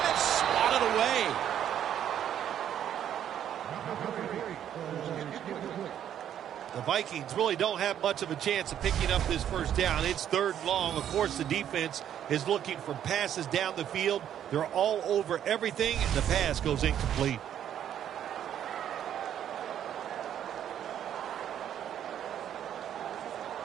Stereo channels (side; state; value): left; quieter; 10.1 dB